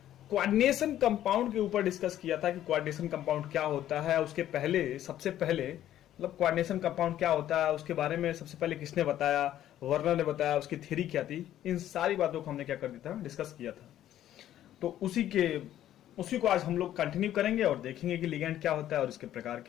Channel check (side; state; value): right; quieter; 12.1 dB